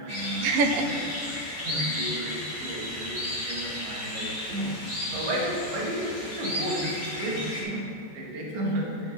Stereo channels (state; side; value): late; left; 14 ms